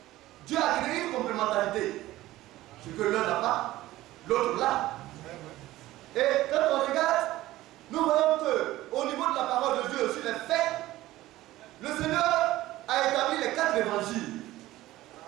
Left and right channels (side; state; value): left; quieter; 16.3 dB